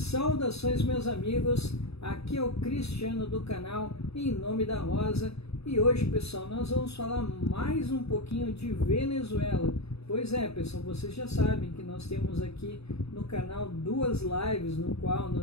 meus amigos, aqui é o Cristiano do canal Em Nome da Rosa e hoje, pessoal, nós vamos falar mais um pouquinho de Venezuela. Pois é, pessoal, vocês já sabem que nós temos aqui no canal duas lives no qual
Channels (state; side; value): late; right; 0.78 ms